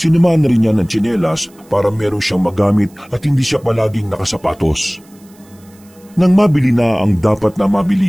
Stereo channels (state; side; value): noise; right; hiss, 29 dB below the sound